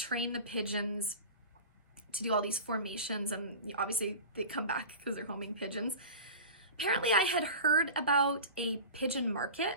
the pigeons to do all these formations, and obviously they come back because they're homing pigeons. Apparently I had heard about a pigeon market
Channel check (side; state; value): both; inverted; correlation -0.33